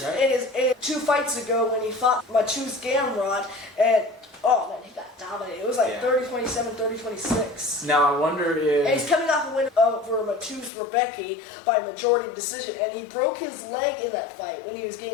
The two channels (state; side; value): drops out; right; at 10.7 s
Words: right? in 2 fights ago when he fought Mateusz Gamrot, and oh man, he got dominated. It was like 30-27, 30-26. Now I wonder if... And he's coming off a win over Mateusz Rębecki by majority decision, and he broke his leg in that fight when he was